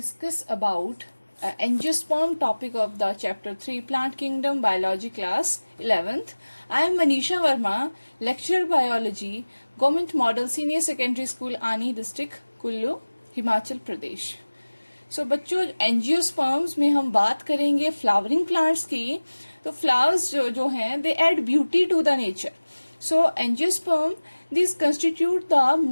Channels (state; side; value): inverted; both; correlation -1.00